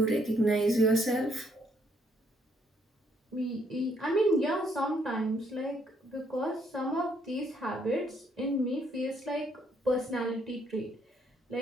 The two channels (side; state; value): both; normal; correlation 0.70